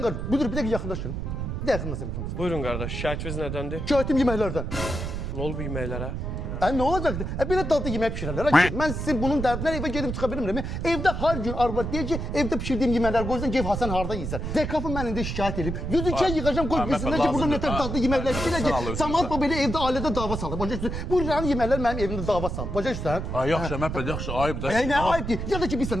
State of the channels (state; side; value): noise; right; rumble, 4 dB below the sound